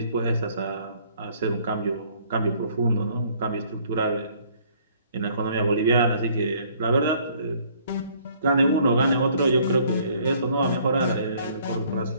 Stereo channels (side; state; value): both; inverted; correlation -0.60